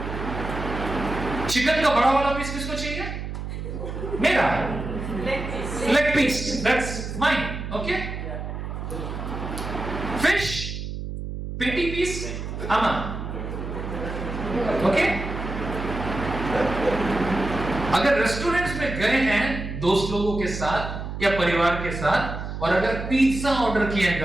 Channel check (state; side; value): noise; right; hum, 6 dB below the sound